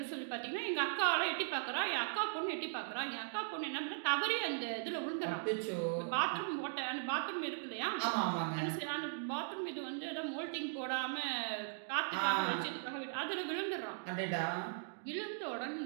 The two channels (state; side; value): silent; left; digital silence